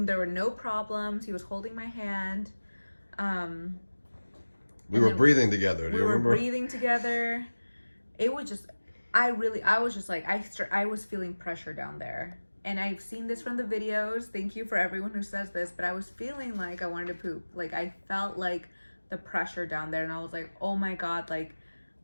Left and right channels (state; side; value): inverted; both; correlation -1.00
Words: there were no problems. He was holding my hand. We were breathing together. Do you remember? We were breathing together. It was just, I was just like, I was feeling pressure down there. And I've seen this from the videos. Thank you for everyone who says this, but I was feeling like I wanted to poop. Like, I felt like the pressure down there, and I was like, oh my God, like,